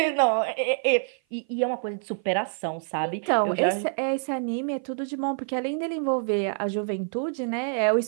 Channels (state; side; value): silent; left; 55 dB below the other